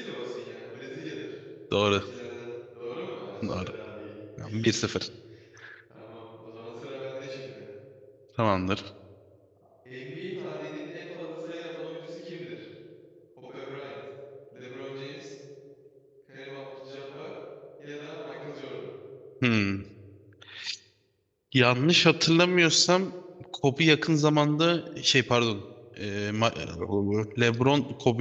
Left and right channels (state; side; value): identical; both; correlation 1.00